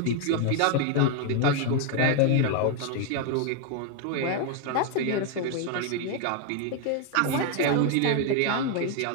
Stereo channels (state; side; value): different; both; correlation 0.01